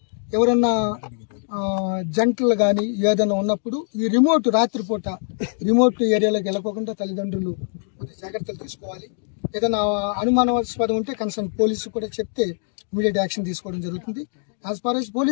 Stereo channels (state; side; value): silent; right; 64 dB below the other